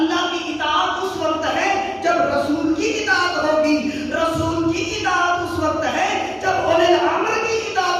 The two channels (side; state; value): both; identical; correlation 1.00